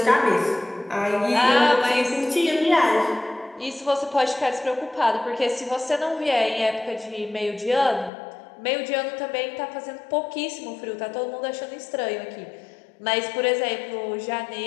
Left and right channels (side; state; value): right; drops out; at 8.1 s